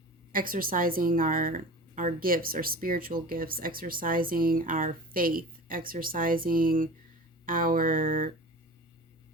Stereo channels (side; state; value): both; normal; correlation 0.36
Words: exercising our gifts, our spiritual gifts, exercising our faith, exercising our